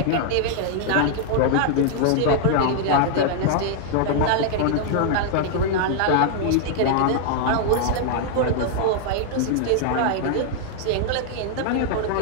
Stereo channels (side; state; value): both; different; correlation -0.01